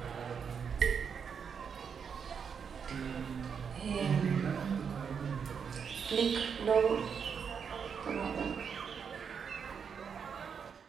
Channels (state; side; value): quieter; left; 6.7 dB